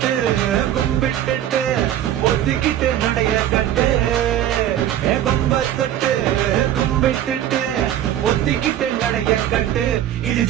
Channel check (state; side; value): quieter; left; 11.6 dB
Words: கும்பிட்டுட்டு ஒத்திக்கிட்டு நடைய கட்டு கொம்ப தொட்டு கும்பிட்டுட்டு ஒத்திக்கிட்டு நடைய கட்டு இது